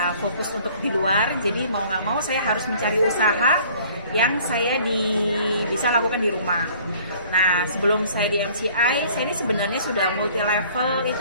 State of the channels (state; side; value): inverted; both; correlation -0.53